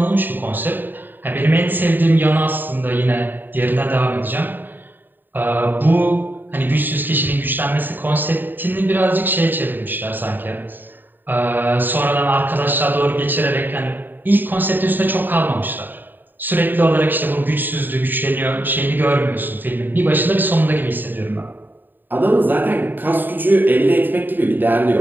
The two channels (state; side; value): late; left; 0.091 ms